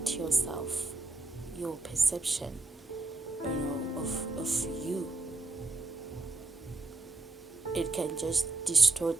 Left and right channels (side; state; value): left; quieter; 3.2 dB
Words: yourself, your perception, of you. It can just